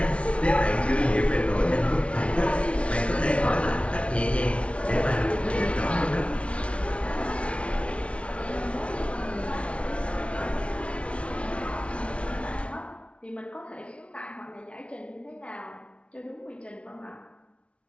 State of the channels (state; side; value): late; right; 0.061 ms